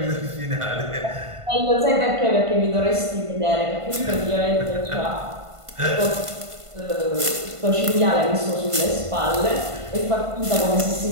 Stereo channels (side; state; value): left; late; 1.5 ms